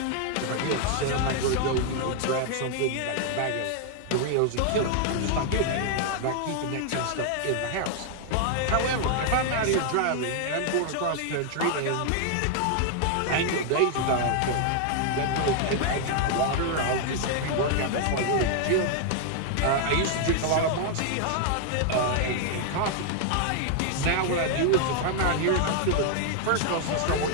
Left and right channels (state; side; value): different; both; correlation 0.00